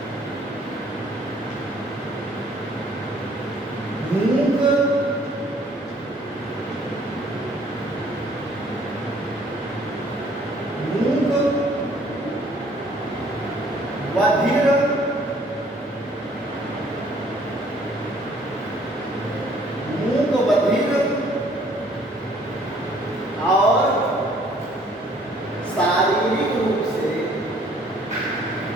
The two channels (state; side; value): normal; both; correlation 0.59